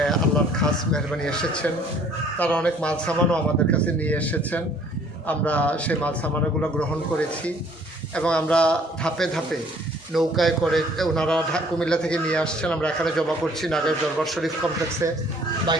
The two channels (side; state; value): both; normal; correlation 0.57